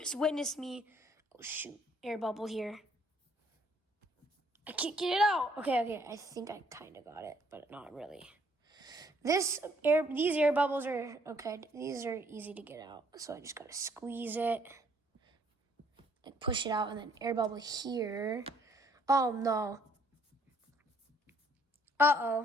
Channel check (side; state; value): both; normal; correlation 0.64